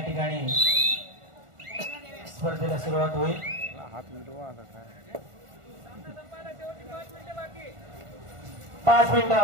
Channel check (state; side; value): late; left; 1.4 ms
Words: ठिकाणी स्पर्धेला सुरुवात होईल. 5 मिनिटं